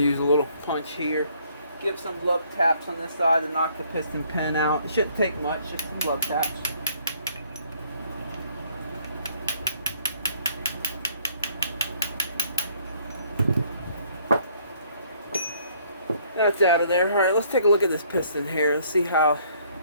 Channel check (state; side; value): inverted; both; correlation -0.63